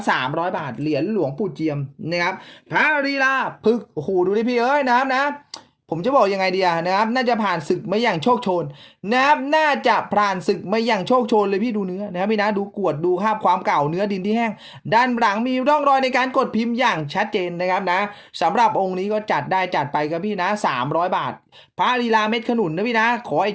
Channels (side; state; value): both; identical; correlation 1.00